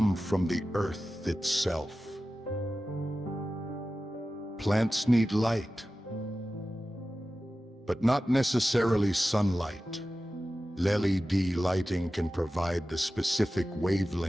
from the earth itself. Plants need light, but not necessarily sunlight. LED lighting can provide the specific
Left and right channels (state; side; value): normal; both; correlation 0.94